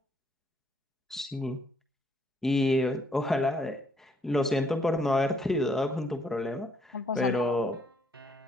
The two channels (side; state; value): both; normal; correlation 0.69